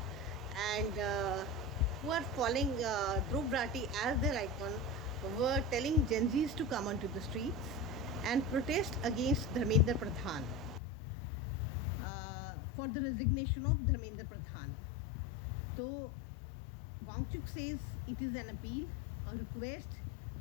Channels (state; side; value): drops out; right; at 10.8 s